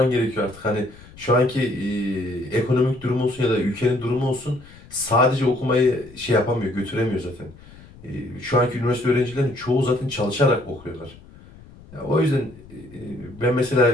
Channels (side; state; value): left; noise; rumble, 21 dB below the sound